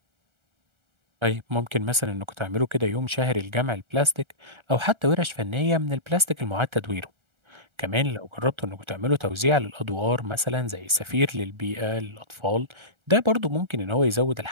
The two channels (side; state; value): left; late; 1.3 ms